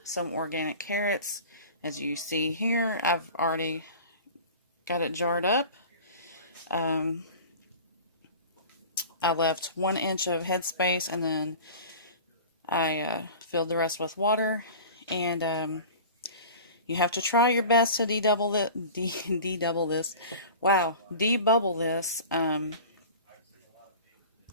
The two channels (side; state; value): both; inverted; correlation -0.39